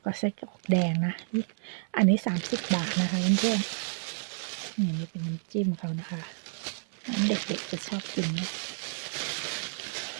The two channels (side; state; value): left; silent; 58 dB below the other